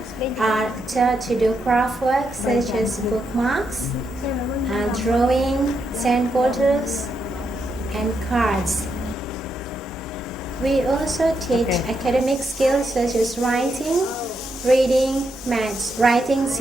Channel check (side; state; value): both; normal; correlation 0.81